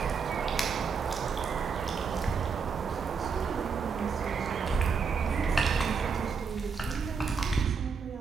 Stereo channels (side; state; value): left; quieter; 5.6 dB